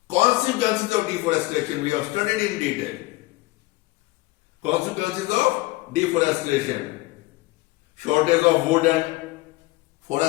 consequences of deforestation, we have studied in detail. Consequences of deforestation: shortage of wood and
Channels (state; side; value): quieter; right; 20.5 dB